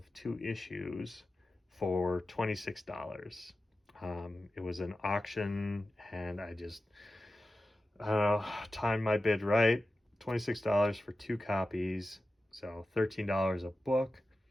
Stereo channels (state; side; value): normal; both; correlation 0.93